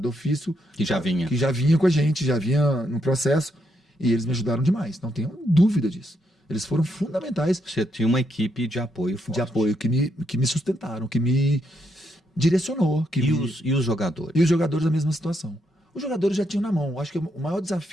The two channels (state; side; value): normal; both; correlation 0.78